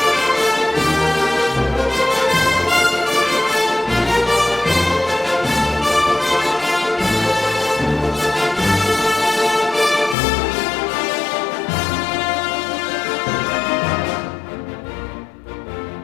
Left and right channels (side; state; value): right; drops out; at 10.2 s